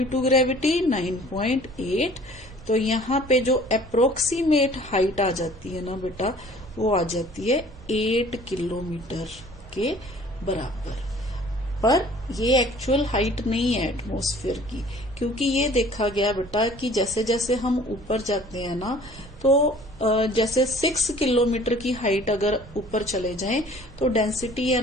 to gravity 9.8। तो यहाँ पे जो अप्रोक्सीमेट हाइट आ जाती है ना बेटा वो आ जाती है 8 किलोमीटर के बराबर। पर ये एक्चुअल हाइट नहीं है एटमॉस्फेयर की, क्योंकि ये देखा गया बेटा कि जैसे जैसे हम ऊपर जाते हैं ना तो जैसे 6 किलोमीटर की हाइट अगर ऊपर चले जाएं तो डेंसिटी है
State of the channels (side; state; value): right; noise; rumble, 19 dB below the sound